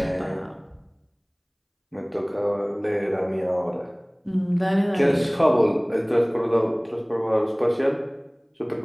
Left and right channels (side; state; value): both; identical; correlation 1.00